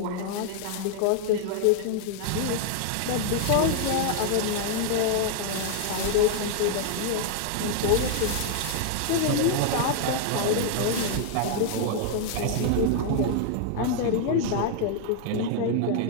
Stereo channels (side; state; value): both; different; correlation 0.00